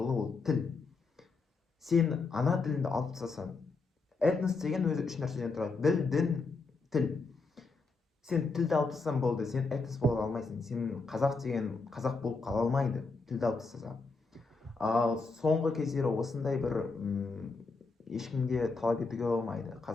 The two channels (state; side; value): quieter; right; 4.0 dB